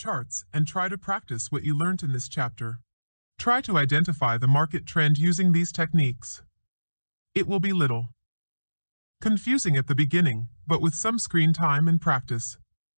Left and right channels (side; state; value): both; inverted; correlation -1.00